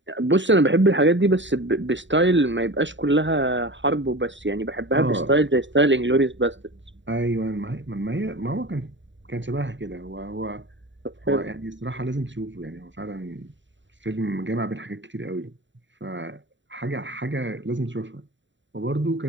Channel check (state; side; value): late; left; 0.54 ms